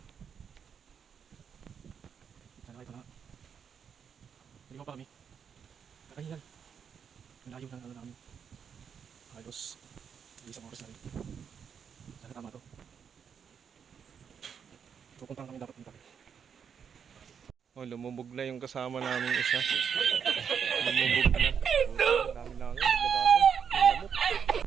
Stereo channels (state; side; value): quieter; left; 7.2 dB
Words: Ito na. Naligaw pa kami. Nakahingal. Malayo ng ano namin. Halos isang oras na rin. Sana tama to. Pupuntahan kami dapat dito. Oh, lumubog na yung kasama namin isa. Lumubog na. Ang dami lang yun. Naglabasan. Lamok.